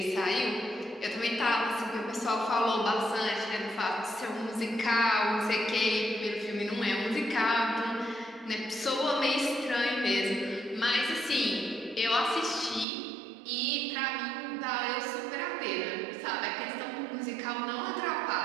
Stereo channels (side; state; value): left; drops out; at 12.9 s